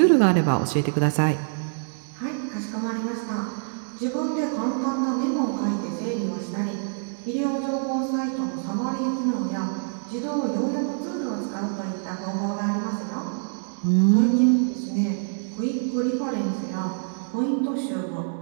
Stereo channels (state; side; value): silent; left; digital silence